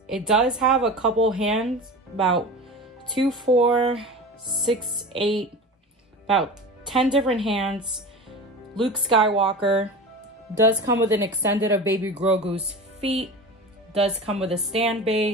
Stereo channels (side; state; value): both; normal; correlation 0.32